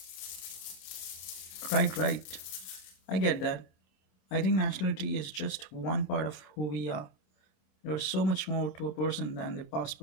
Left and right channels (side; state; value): right; late; 26 ms